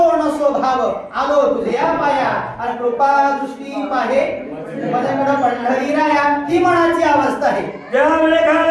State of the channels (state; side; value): identical; both; correlation 1.00